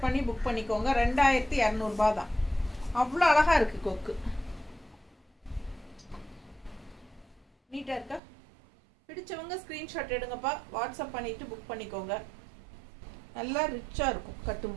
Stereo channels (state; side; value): drops out; left; at 8.2 s